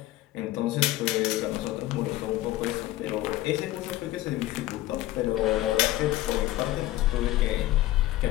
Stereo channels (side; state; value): right; quieter; 16.0 dB